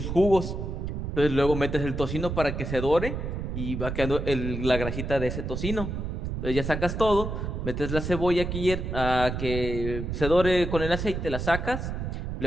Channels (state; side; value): noise; right; rumble, 4 dB below the sound